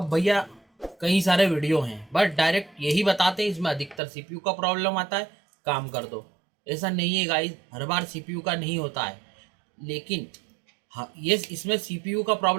भैया कई सारे वीडियो हैं, बट डायरेक्ट यही बताते हैं इसमें अधिकतर सीपीयू का प्रॉब्लम आता है, काम कर दो। ऐसा नहीं है गाइस, हर बार सीपीयू का नहीं होता है। लेकिन हाँ, ये इसमें सीपीयू का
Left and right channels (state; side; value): drops out; left; at 4.0 s